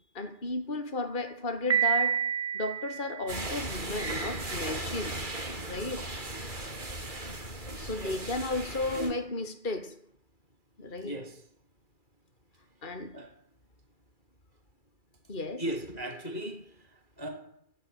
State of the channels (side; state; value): right; late; 2.4 ms